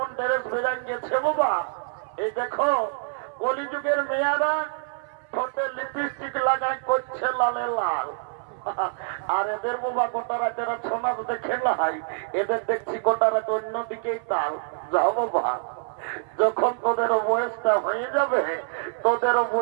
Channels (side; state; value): left; silent; 58 dB below the other